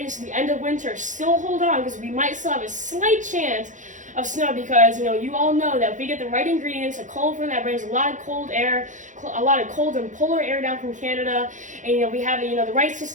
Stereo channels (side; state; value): left; late; 0.36 ms